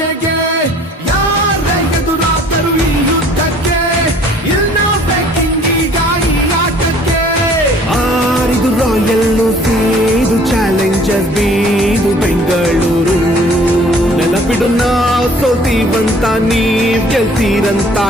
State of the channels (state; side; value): normal; both; correlation 0.55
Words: ಯಾರೇ ಎದುರಾದರು ಈ ಯುದ್ಧಕ್ಕೆ ಇಲ್ಲ ಬೇಕಿಂಗೀಗ ಈ ಆಟಕ್ಕೆ ಆರಿದು ರಾಯಲ್ ಇದು ಚಾಲೆಂಜರ್ ಬೀದು ಬೆಂಗಳೂರು ನೆನಪಿಡು ನಾವು ಸೋಲ್ತೀವಂತ ನೀವ್ ಗೆಲ್ತೀರಂತ